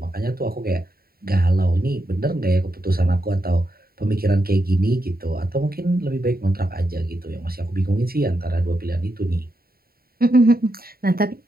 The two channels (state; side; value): late; left; 0.44 ms